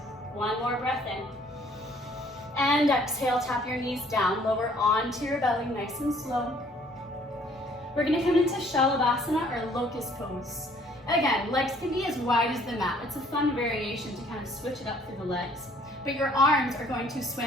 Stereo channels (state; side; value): normal; both; correlation 0.60